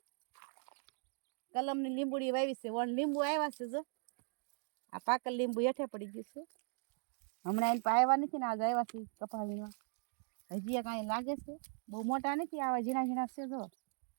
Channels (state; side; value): silent; left; 52 dB below the other